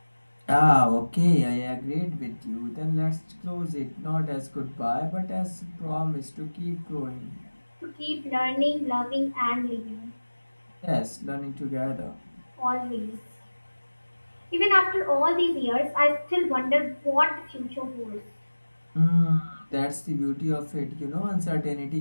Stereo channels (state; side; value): inverted; both; correlation -1.00